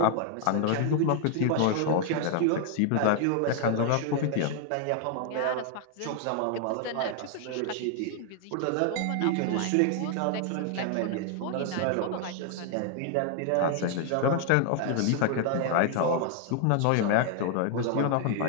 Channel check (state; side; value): different; both; correlation 0.00